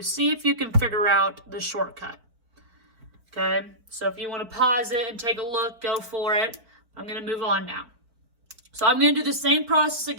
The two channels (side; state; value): left; late; 4.5 ms